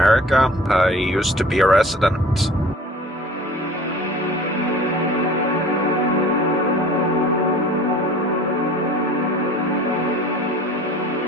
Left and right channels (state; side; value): normal; both; correlation 0.45